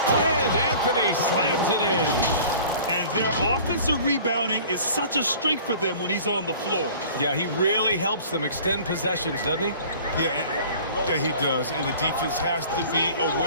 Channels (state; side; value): inverted; both; correlation -0.46